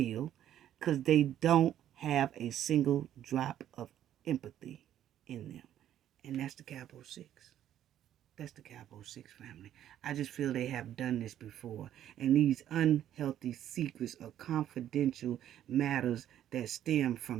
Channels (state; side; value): quieter; left; 11.3 dB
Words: because they don't have a single drop of empathy in them. And that's the Cabo 6. That's the Cabo 6 family. I just feel they have done this before. And these unhealthy secrets are confidential matters that stem